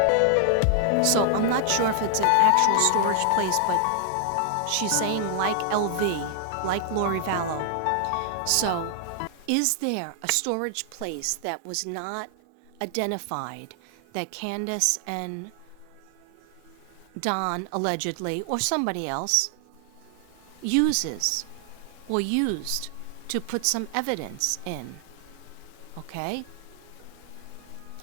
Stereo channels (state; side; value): different; both; correlation 0.00